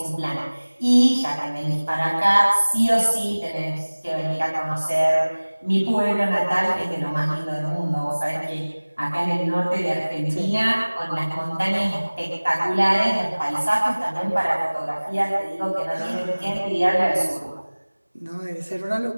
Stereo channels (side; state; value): both; inverted; correlation -1.00